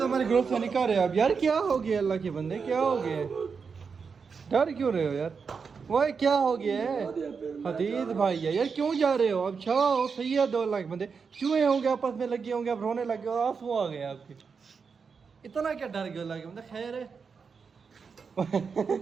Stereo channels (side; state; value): left; quieter; 5.6 dB